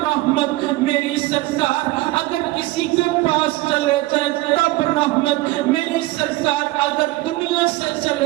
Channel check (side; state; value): left; quieter; 18.9 dB